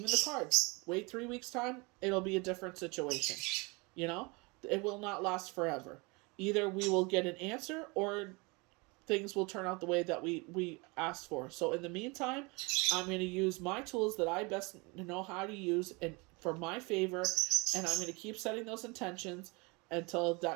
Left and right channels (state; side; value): quieter; left; 27.7 dB